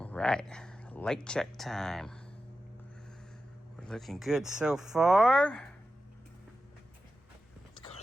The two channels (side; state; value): both; normal; correlation 0.92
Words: right, light check time. We're looking good so far. Let's go